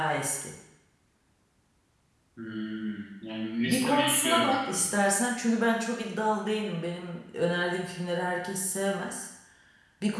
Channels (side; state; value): both; identical; correlation 1.00